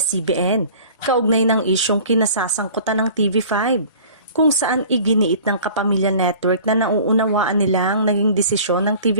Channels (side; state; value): both; inverted; correlation -0.45